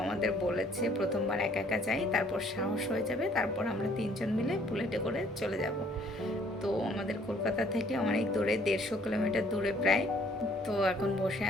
আমাদের বলেছে প্রথমবার একা যাই, তারপর সাহস হয়ে যাবে, তারপর আমরা 3 জন মিলে বুলেটে করে চলে যাব। তো আমাদের কলকাতা থেকে অনেক দূরে, 150 কিলোমিটার দূরে প্রায়। তো এখন বসে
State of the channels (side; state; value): both; normal; correlation 0.61